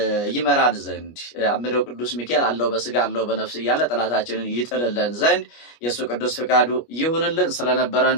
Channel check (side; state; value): right; late; 25 ms